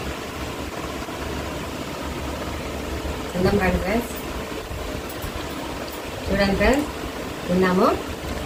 తిందాం రండి ఫ్రెండ్స్. చూడండి ఫ్రెండ్స్, తిన్నాము.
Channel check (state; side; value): identical; both; correlation 1.00